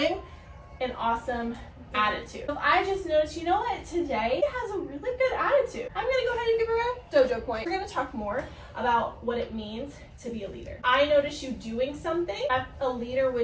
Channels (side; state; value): both; identical; correlation 1.00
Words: an awesome attitude. If I just noticed, you know what, today has a really good attitude, I'm gonna go ahead and give her a dojo point. We're gonna talk more about what it means to be a leader. I notice you doing something that a leader